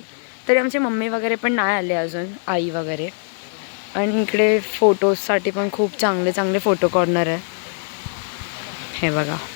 तरी आमची मम्मी वगैरे पण नाही आले अजून, आई वगैरे. आणि इकडे फोटोजसाठी पण खूप चांगले चांगले फोटो कॉर्नर आहे. हे बघा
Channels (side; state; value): right; silent; 64 dB below the other